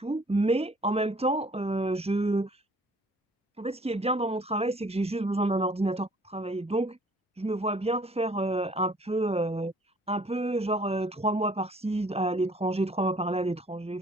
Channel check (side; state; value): both; normal; correlation 0.57